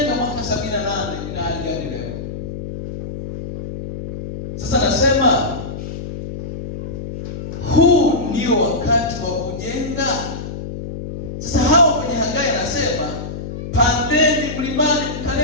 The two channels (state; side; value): noise; left; hum, 8 dB below the sound